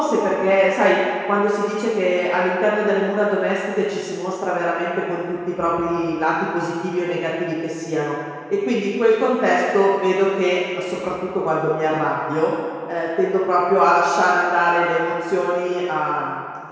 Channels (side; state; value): both; identical; correlation 1.00